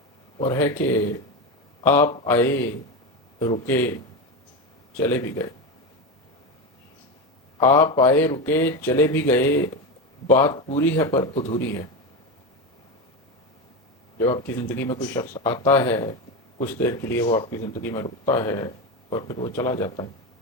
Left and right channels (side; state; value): both; normal; correlation 0.17